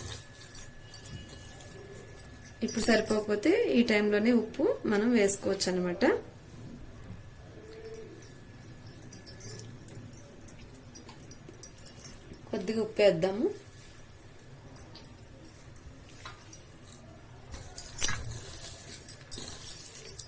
ఇప్పుడు సరిపోకపోతే ఈ టైంలోనే ఉప్పు మనం వేసుకోవచ్చు అన్నమాట. కొద్దిగా ఉప్పు వేద్దాము.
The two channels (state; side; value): identical; both; correlation 1.00